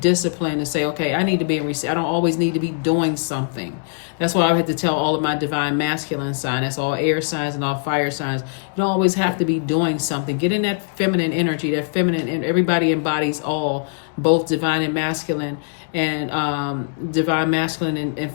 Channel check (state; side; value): silent; right; digital silence